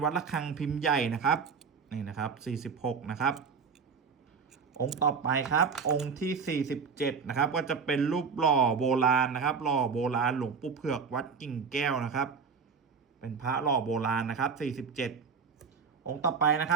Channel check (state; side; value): quieter; left; 5.6 dB